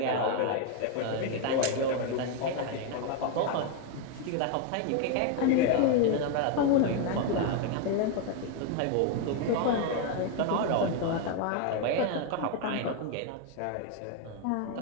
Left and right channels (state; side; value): different; both; correlation 0.01